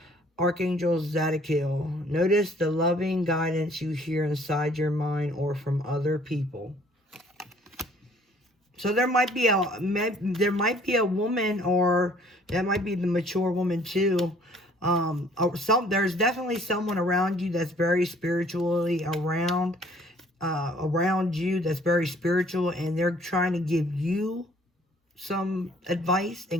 Archangel Zadkiel, notice the loving guidance you hear inside your mind or from other people. So there might be a woman, or that might be the mature woman too. There's definitely someone around you that's very spiritually around you, that's very spiritual, and they're trying to give you some advice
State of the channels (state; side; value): normal; both; correlation 0.58